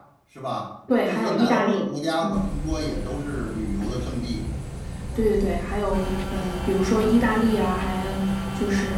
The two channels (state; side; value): identical; both; correlation 1.00